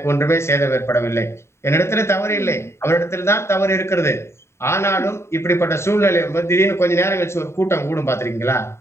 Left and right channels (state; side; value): late; right; 0.13 ms